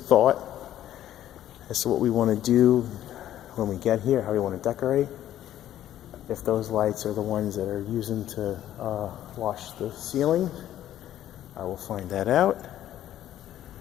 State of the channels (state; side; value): quieter; right; 12.2 dB